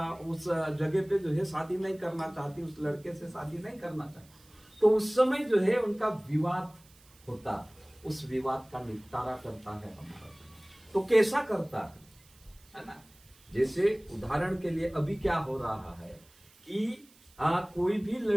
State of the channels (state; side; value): noise; right; hiss, 27 dB below the sound